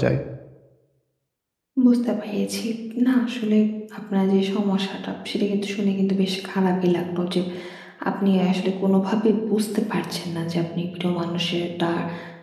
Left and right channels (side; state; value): both; identical; correlation 1.00